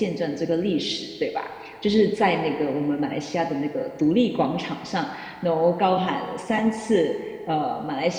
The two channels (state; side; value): identical; both; correlation 1.00